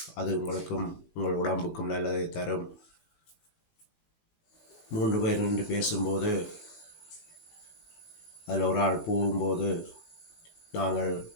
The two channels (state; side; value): late; right; 19 ms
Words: அது உங்களுக்கும் உங்கள் உடம்புக்கும் நல்லதை தரும். 3 பேர் நின்று பேசும்போது அதில் ஒரு ஆள் போகும்போது நாங்கள்